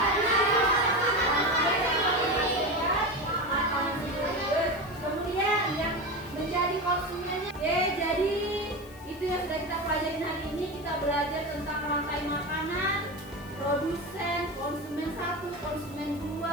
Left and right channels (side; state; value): left; noise; hiss, 23 dB below the sound